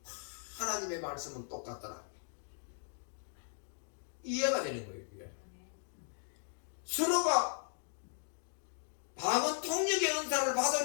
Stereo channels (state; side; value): silent; right; digital silence